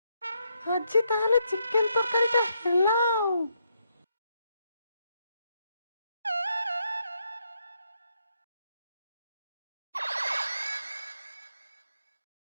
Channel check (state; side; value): inverted; both; correlation -0.78